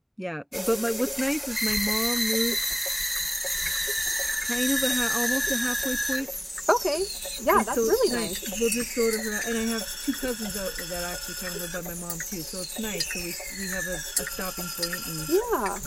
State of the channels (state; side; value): identical; both; correlation 1.00